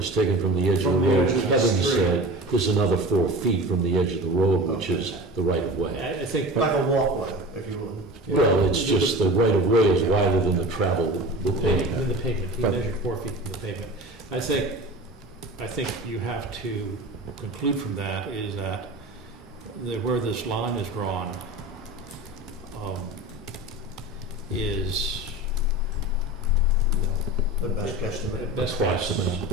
taken from the edge of the From the road. edge of the Kevin street. said there's another 4 feet from the edge of the road, which is the right of way. I think. Like a walkway, if you will. Well, it's just the right of way is wider than the travel with pavement. In the pavement, he measured 4 feet from the pavement. I think you have to conclude from that is that where this line is drawn is The best guesstimate. best Approximate.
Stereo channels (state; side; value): normal; both; correlation 0.34